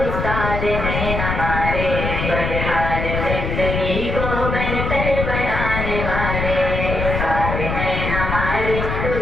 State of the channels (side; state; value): left; noise; rumble, 2 dB below the sound